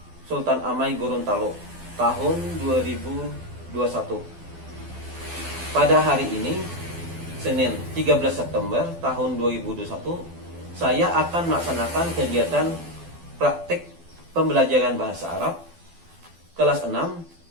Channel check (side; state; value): left; late; 12 ms